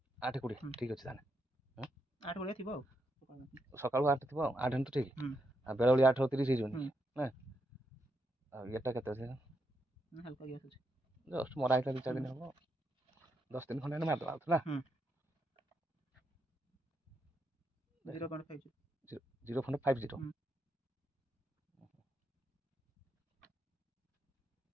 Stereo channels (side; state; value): both; normal; correlation 0.81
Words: ଠିକ୍ ଅଛି ତାହେଲେ 8:20 ଥିବ ଆଉ ସକାଳୁ 8 ଥିବ ଆଉ 8 ତ ଠିକ୍ ଆଉ ବେଳବେଳି 8:30 ହେଇଯିବନି ନା ଆଉ ଇଏଟା କେତେ ଅଛି ହାଲକା ଗ୍ୟାସ୍ ଅଛି ଜଷ୍ଟ ମରା ହେଇଥିଲା 2-4 ଦିନ ହବ 10 ଦିନ ଖଣ୍ଡେ ମାରିଦେବା ଆଉ ନା 0.50